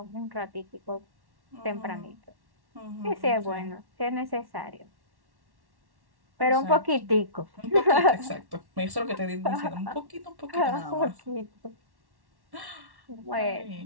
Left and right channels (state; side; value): late; left; 1.1 ms